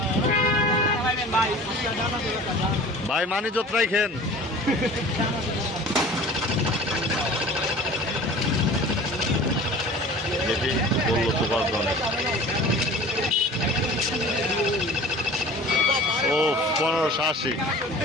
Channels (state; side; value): normal; both; correlation 0.42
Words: ভাই মানি যত্রাই খেন। দেখি বললো তো 5 জনের। ও 1580।